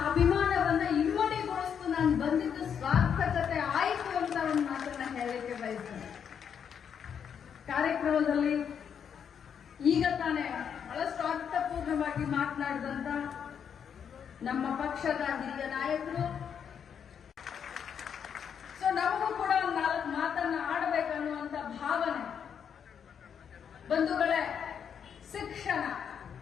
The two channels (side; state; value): right; quieter; 7.7 dB